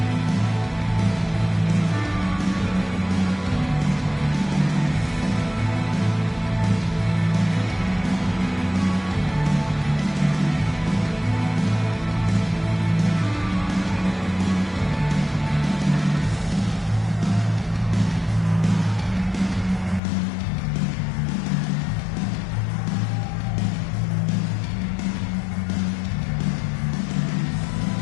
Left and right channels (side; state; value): right; drops out; at 20.0 s